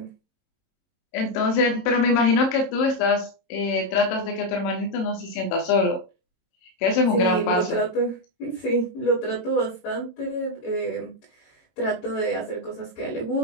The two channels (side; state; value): right; late; 23 ms